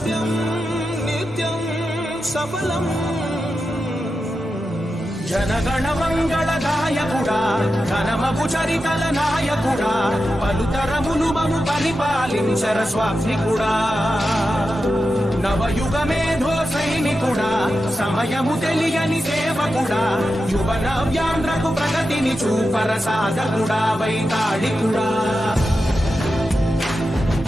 నిత్యం సఫలం. జనగణ మంగళ గాయకుడా, ఘనమగు చరితల నాయకుడా, పలుతరములు మము పరిపాలించర స్వామికుడా, నవయుగ మేధో సైనికుడా, సమయము తెలియని సేవకుడా, యువ నవ్యాంధ్రకు ప్రగతిని చూపర సాధకుడా, వైతాళికుడా.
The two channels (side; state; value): both; normal; correlation 0.90